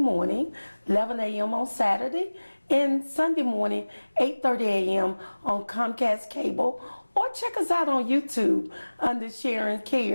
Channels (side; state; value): both; inverted; correlation -1.00